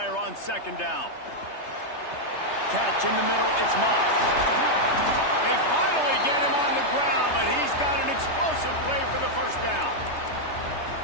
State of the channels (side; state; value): right; late; 3.3 ms